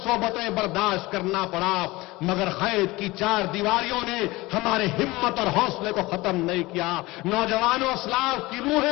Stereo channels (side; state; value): right; quieter; 20.8 dB